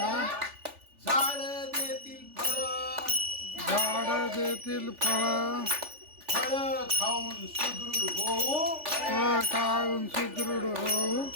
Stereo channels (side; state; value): left; late; 3.4 ms